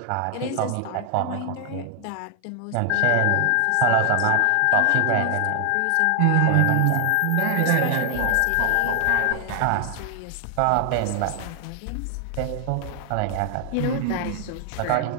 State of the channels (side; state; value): both; different; correlation 0.00